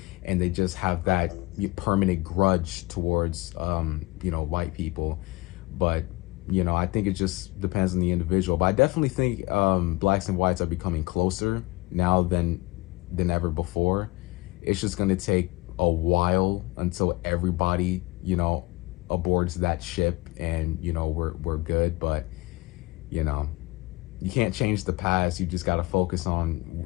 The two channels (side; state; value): right; quieter; 20.6 dB